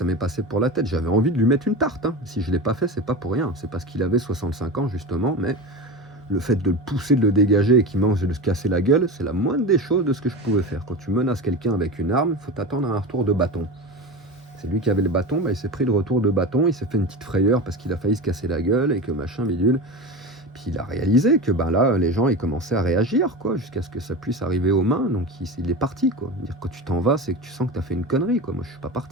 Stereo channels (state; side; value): normal; both; correlation 0.26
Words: m'est passé pour la tête. J'avais envie de lui mettre une tarte, hein. Si je l'ai pas fait, c'est pas pour rien. C'est parce qu'il avait 65 ans, justement, mais le fait de le pousser, de le dégager et qu'il mange et de se casser la gueule, c'est la moindre des choses de ce que je pouvais faire. Quand tu menaces quelqu'un avec une arme, il faut t'attendre à un retour de bâton. C'est lui qui avait le bâton, bah, il s'est pris le retour de bâton, il s'est fait une petite frayeur parce qu'il a failli se casser la gueule et que machin bidule. Puis il a réalisé que ben là, les gens ils commençaient à réagir, quoi, jusqu'à ce que ça puisse arriver aux mains. Donc il est parti, quoi. Dire quand tu t'en vas, c'est que tu sens que tu as fait une connerie, quoi. Moi je suis pas